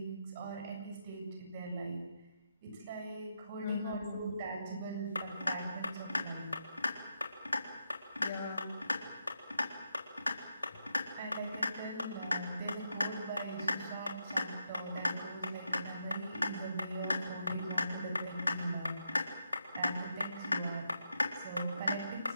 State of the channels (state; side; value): inverted; both; correlation -0.83